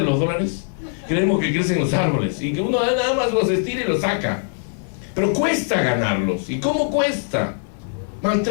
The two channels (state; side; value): silent; right; digital silence